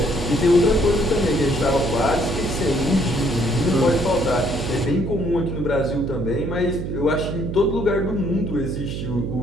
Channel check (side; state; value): right; noise; hum, 5 dB below the sound